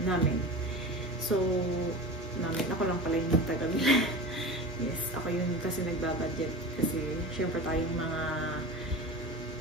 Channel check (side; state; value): both; normal; correlation 0.31